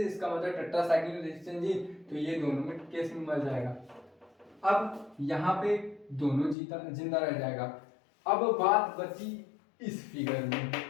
इसका मतलब टेट्रासाइक्लिन रेजिस्टेंस है, तो ये दोनों में केस में मर जाएगा। अब यहाँ पे दोनों जिंदा रह जाएगा। अब बात बची इस फिगर में,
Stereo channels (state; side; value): drops out; right; at 6.6 s